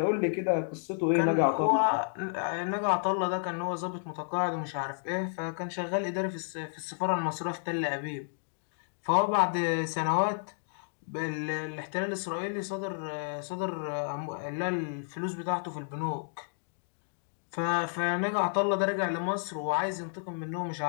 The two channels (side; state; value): right; silent; digital silence